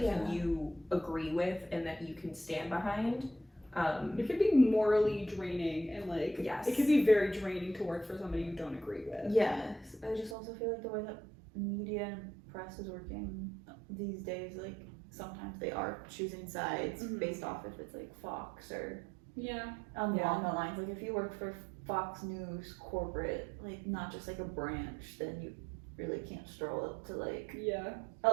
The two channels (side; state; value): left; drops out; at 10.4 s